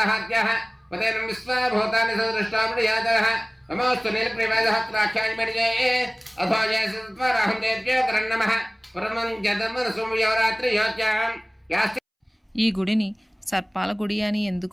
ఉదయనం విశ్వభూతాని సదృష్టామృయాతః నమోస్తు నీలప్రియవాదహత్రాఖ్యానిమర్యే అథో జయసత్వరహం దేవ్యో కరణమః పరమం జతమనసుమయోరాత్రి యోత్యాం యాస్తి. ఈ గుడిని సర్పాల గుడి అని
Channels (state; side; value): identical; both; correlation 1.00